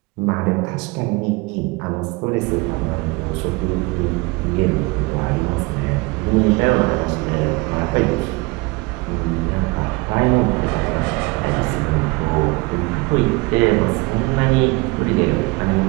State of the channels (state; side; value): quieter; left; 25.5 dB